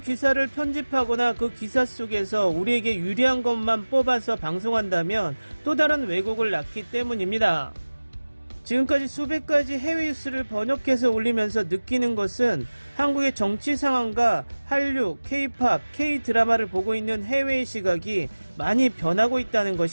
기사를 편집하거나 그 기사 속에서 우리에게 유리한 것만 뽑아서 방송한다면 또 다른 왜곡을 낳기 때문입니다. 지금까지 수백 가지 해외 뉴스를 번역해서 올리면서 느끼는 것은 한국의 정치 상황과 한류, K-POP, K-드라마를 보고 있는 해외의 시각이 많이 변하고 있다는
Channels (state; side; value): inverted; both; correlation -1.00